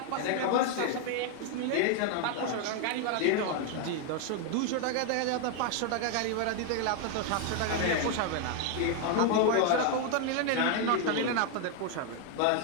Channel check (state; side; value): different; both; correlation 0.00